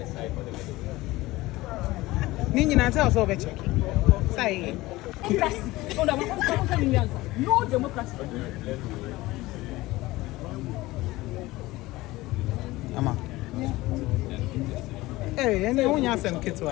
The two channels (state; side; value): quieter; right; 19.1 dB